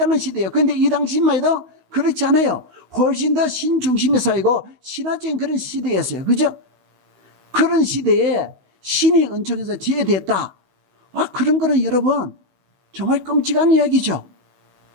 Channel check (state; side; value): late; left; 16 ms